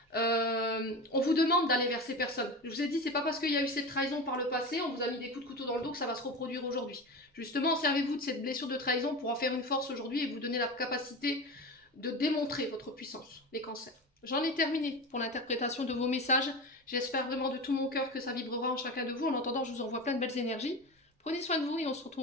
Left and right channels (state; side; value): normal; both; correlation 0.27